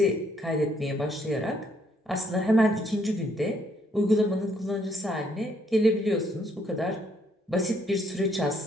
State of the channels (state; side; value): normal; both; correlation 0.70